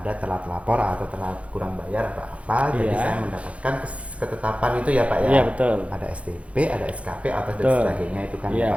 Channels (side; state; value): left; late; 0.063 ms